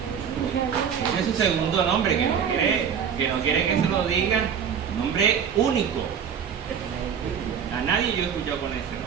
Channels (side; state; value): left; quieter; 7.6 dB